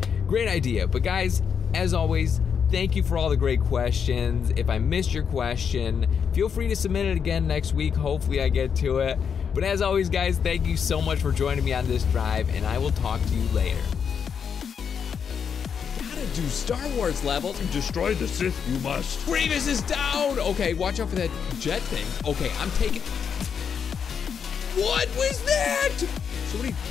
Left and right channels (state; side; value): quieter; right; 7.0 dB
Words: Great idea. But guys, as always, thank you for all the great questions. If I missed your question, feel free to submit it again next week. Hopefully I get to it. But as always, guys, thank you so much for joining me on this drive, and I will talk to you later. Gotta do Star Wars levels. Destroy the Sith, you must. Grievous is down! Okay, watch out for that jet thing. Okay, I'm taking... What was that? So